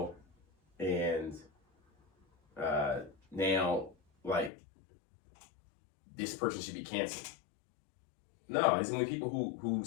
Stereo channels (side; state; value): right; drops out; at 4.5 s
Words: and now, like, this person should be canceled. No, it's only people who